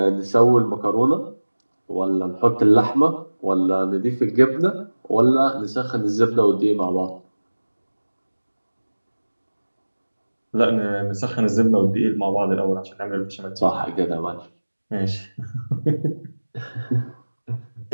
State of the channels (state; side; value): inverted; both; correlation -1.00